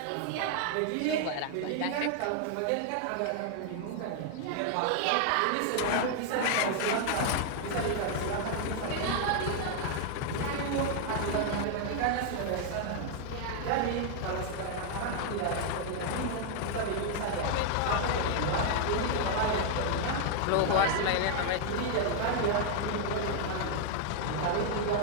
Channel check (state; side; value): different; both; correlation 0.00